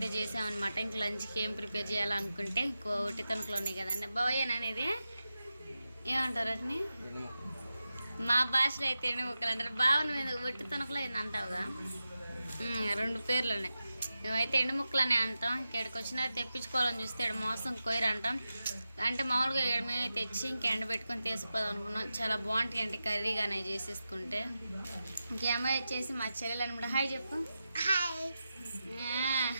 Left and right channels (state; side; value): inverted; both; correlation -0.92